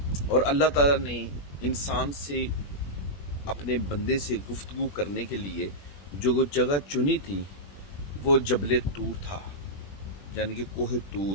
और अल्लाह ताला ने इंसान से, अपने बंदे से गुफ्तगू करने के लिए जो जगह चुनी थी वो जबल तूर था, यानी कि कोहे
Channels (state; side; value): late; right; 21 ms